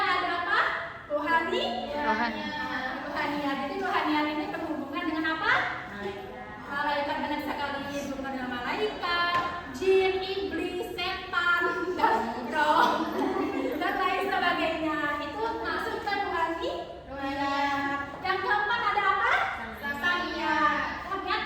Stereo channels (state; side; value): identical; both; correlation 1.00